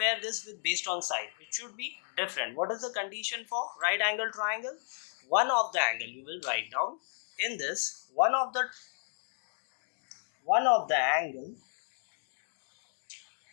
this with based on side, it should be different. What is the condition for right angle triangle? One of the angle, you will write down in this, one of the angle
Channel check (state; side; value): silent; right; digital silence